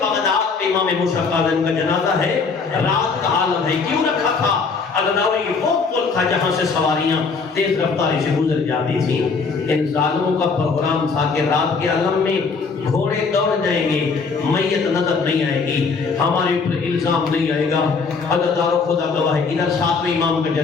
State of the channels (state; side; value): quieter; right; 4.8 dB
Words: بغداد میں امام موسیٰ قاظم کا جنازہ ہے، رات کا عالم ہے، کیوں رکھا تھا؟ عزاداری وہ پل تھا جہاں سے سواریاں تیز رفتاری سے گزر جاتی تھیں۔ ان ظالموں کا پروگرام تھا کہ رات کے عالم میں گھوڑے دوڑ جائیں گے، میت نظر نہیں آئے گی، ہمارے اوپر الزام نہیں آئے گا۔ عزادارو خدا گواہ ہے ادھر 7ویں امام کا